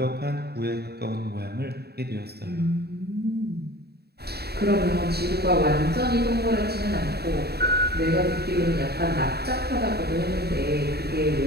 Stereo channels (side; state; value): left; late; 0.47 ms